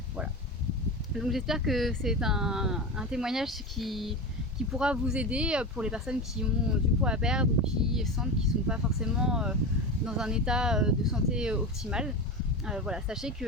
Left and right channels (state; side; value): normal; both; correlation 0.23